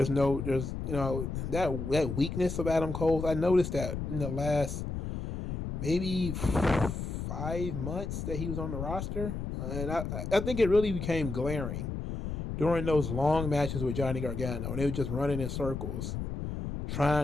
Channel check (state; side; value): noise; left; rumble, 5 dB below the sound